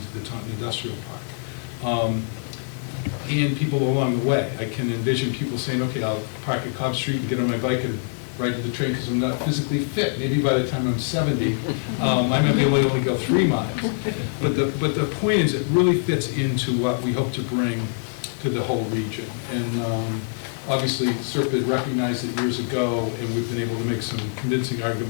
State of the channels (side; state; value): right; silent; 62 dB below the other